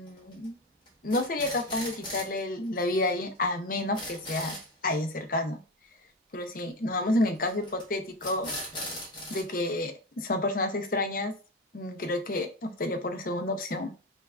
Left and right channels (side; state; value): both; normal; correlation 0.21